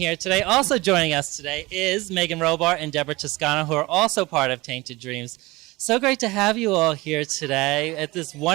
today. Also joining us today is Meagan, Robar, and Deborah Toscano, who are also part of Tainted Dreams. So great to have you all here today at this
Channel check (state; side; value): quieter; left; 21.7 dB